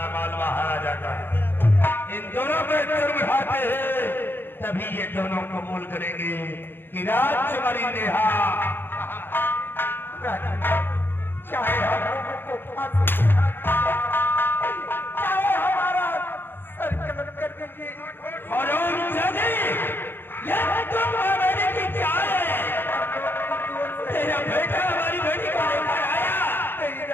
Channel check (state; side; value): late; right; 0.10 ms